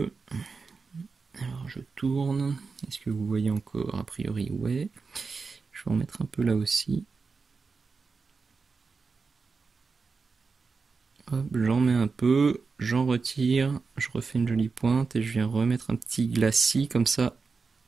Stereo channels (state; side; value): quieter; left; 4.7 dB